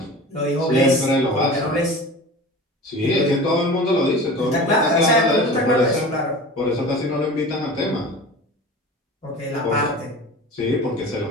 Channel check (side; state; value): both; normal; correlation 0.36